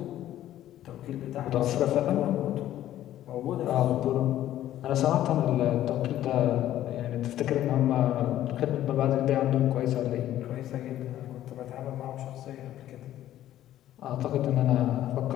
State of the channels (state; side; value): quieter; right; 12.8 dB